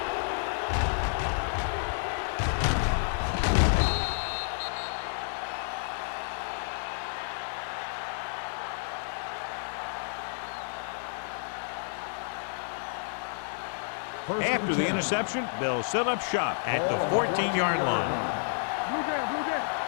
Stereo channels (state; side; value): silent; right; digital silence